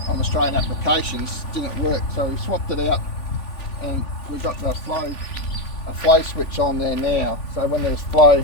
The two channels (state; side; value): late; right; 3.5 ms